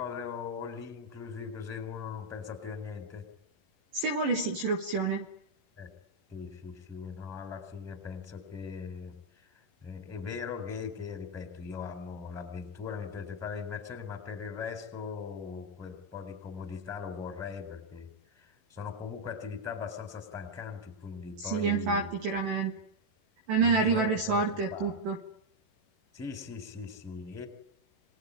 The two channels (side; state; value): left; late; 11 ms